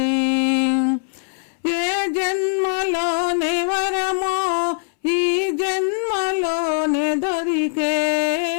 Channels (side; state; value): right; silent; 63 dB below the other